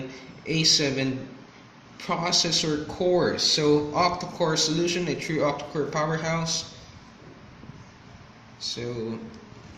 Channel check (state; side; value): identical; both; correlation 1.00